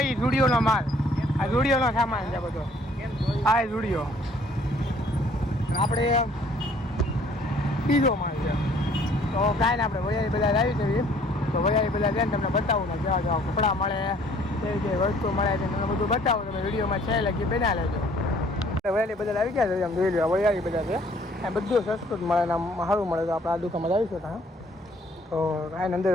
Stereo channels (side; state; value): both; normal; correlation 0.59